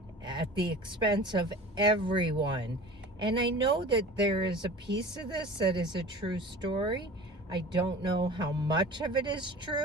at the expense of everyone. And I know that there is a piece of this that is a true story. I don't know how much of it is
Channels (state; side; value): normal; both; correlation 0.39